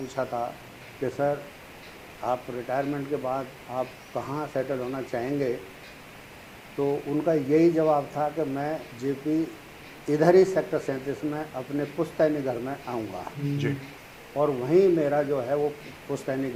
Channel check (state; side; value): identical; both; correlation 1.00